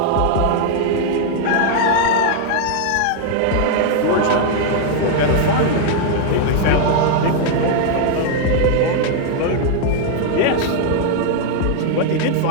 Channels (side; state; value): both; different; correlation 0.00